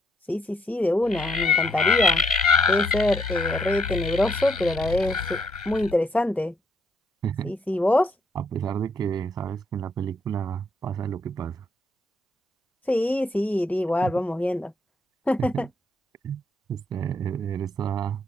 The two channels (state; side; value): normal; both; correlation 0.73